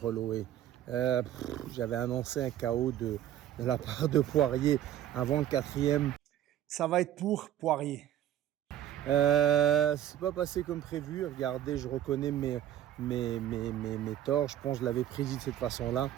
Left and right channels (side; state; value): left; quieter; 11.6 dB